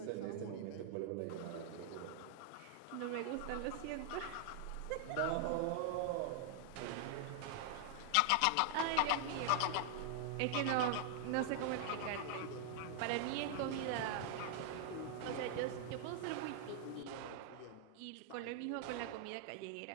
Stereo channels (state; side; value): different; both; correlation 0.00